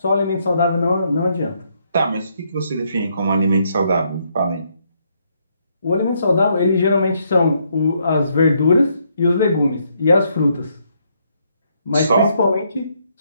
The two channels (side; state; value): both; inverted; correlation -0.74